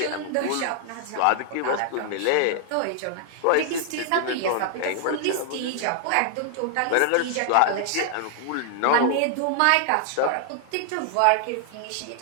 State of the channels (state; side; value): different; both; correlation 0.00